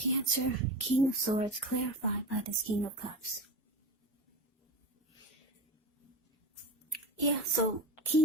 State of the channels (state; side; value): normal; both; correlation 0.25